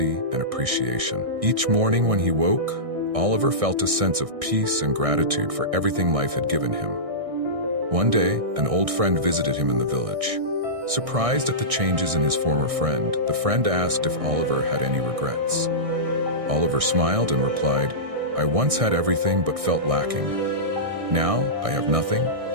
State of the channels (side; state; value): left; late; 1.6 ms